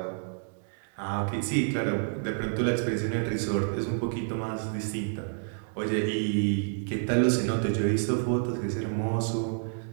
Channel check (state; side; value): silent; left; digital silence